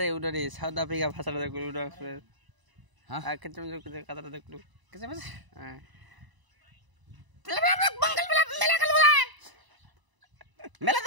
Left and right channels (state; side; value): late; left; 1.0 ms